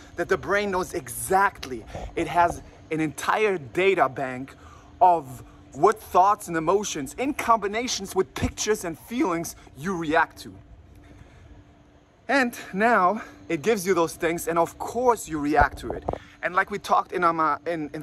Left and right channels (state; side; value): identical; both; correlation 1.00